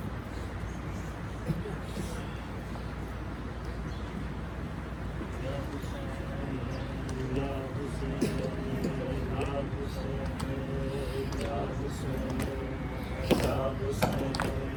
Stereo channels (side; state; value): both; identical; correlation 1.00